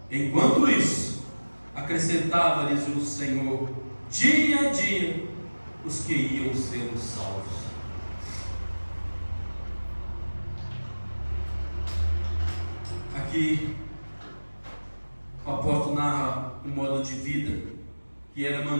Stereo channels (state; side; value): inverted; both; correlation -1.00